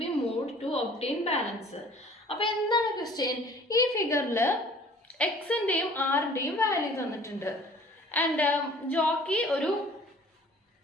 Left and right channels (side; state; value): both; normal; correlation 0.51